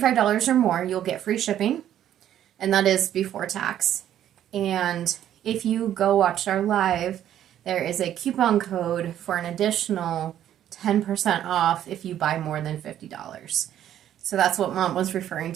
or more, you'll get free shipping, and that is before tax. And if you go watch our live, there is a coupon code for an additional 10% off if you buy more than $50. So that's what Mom was referring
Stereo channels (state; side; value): quieter; left; 11.1 dB